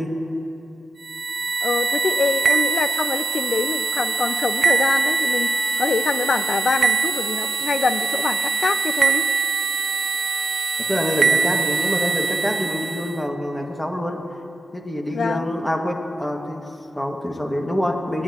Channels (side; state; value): both; normal; correlation 0.85